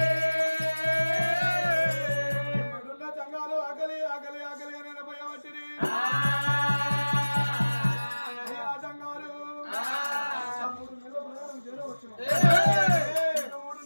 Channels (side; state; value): both; inverted; correlation -1.00